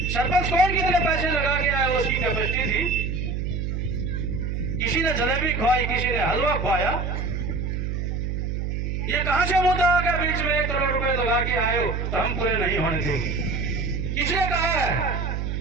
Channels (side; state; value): right; noise; hum, 2 dB below the sound